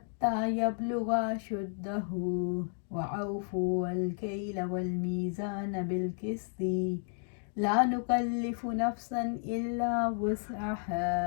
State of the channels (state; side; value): silent; right; 56 dB below the other